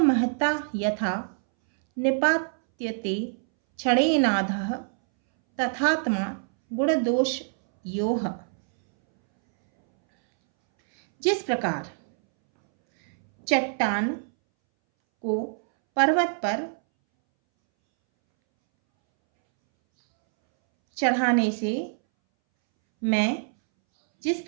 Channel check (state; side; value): silent; left; 62 dB below the other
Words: महता यथा निपात्यते क्षणेनाधः तथात्मा गुणदोष योह। जिस प्रकार चट्टान को पर्वत पर चढ़ाने से जिस